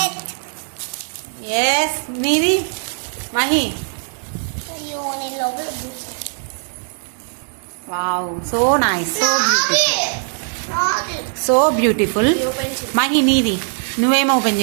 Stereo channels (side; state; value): left; silent; digital silence